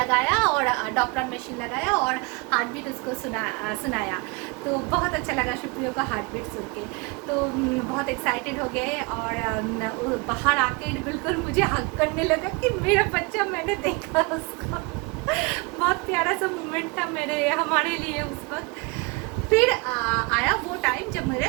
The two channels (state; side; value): quieter; left; 28.2 dB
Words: और डॉपलर मशीन लगाया और हार्ट बीट उसको सुनाया। तो बहुत अच्छा लगा सुप्रियो का हार्ट बीट सुन के। तो बहुत एक्साइटेड हो गए और बाहर आके बिल्कुल मुझे हक करने लगा कि मेरा बच्चा, मैंने देखा उसको। बहुत प्यारा सा मोमेंट था हमारे लिए उस वक्त। फिर आया वो टाइम जब मेरे